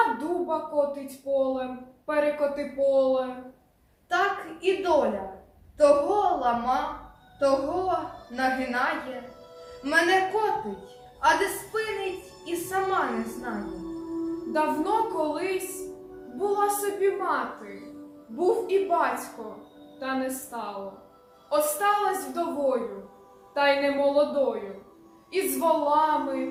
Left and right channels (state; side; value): identical; both; correlation 1.00